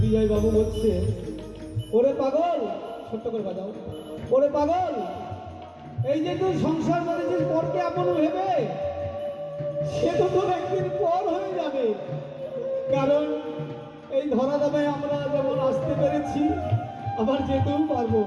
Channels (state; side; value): identical; both; correlation 1.00